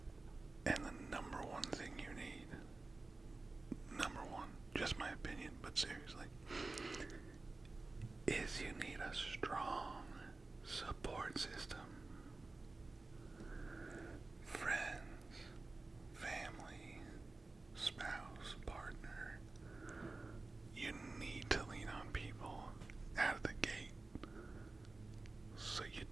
And the number one thing you need, just my opinion, but seriously, is you need a strong support system. Friends, family, spouse, partner. You need to lean on people out of the gate so you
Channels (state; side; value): quieter; left; 3.4 dB